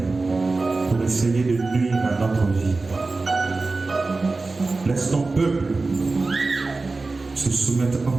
pour essayer de nuire à notre vie. Laisse ton peuple se soumettre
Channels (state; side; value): quieter; left; 3.6 dB